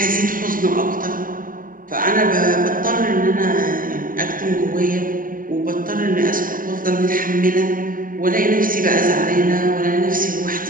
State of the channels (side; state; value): left; late; 0.40 ms